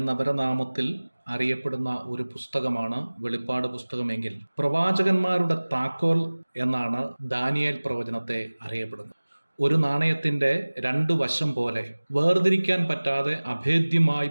അപരനാമത്തിൽ അറിയപ്പെടുന്ന ഒരു പുസ്തകമാണ് വെളിപ്പാട് പുസ്തകമെങ്കിൽ പ്രവാചകന്മാരുടെ താക്കോൽ എന്നാണ് ദാനിയേൽ പ്രവചനത്തെ അറിയപ്പെടുന്നത്. ഒരു നാണയത്തിൻ്റെ രണ്ട് വശം പോലെ വേർതിരിക്കാൻ പറ്റാതെ അഭേദ്യമായി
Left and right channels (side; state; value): both; inverted; correlation -1.00